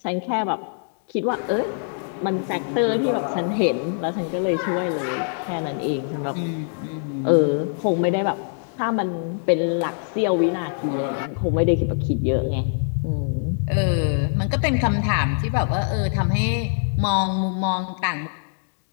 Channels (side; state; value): right; silent; digital silence